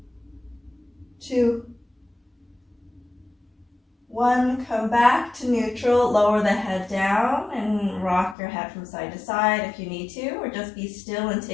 2, 1. Come back to neutral, lower the head down and rock your head from side to side if you need to, or just be still and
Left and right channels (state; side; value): drops out; right; at 8.3 s